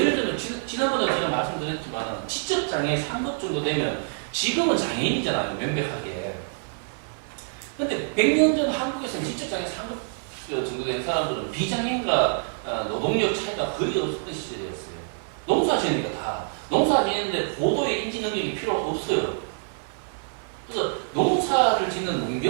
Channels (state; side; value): silent; left; 60 dB below the other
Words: 들면 지난번에 제가 말씀드렸지만 지적장애 3급 정도 되면 지금은 장애인이잖아요. 명백하게. 근데 100년 전 한국에서는 지적장애 3급 정도 된 사람들은 비장애인과 노동력 차이가 거의 없었던 시절이었어요. 농사 지으니까 다. 농사 지는데 고도의 인지 능력이 필요 없어요. 그래서 농사를 짓는